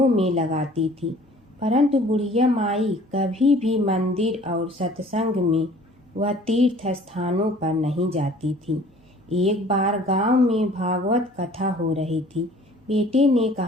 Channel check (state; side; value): normal; both; correlation 0.51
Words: में लगाती थी, परंतु बुढ़िया माई कभी भी मंदिर और सत्संग में व तीर्थ स्थानों पर नहीं जाती थी। एक बार गांव में भागवत कथा हो रही थी। बेटे ने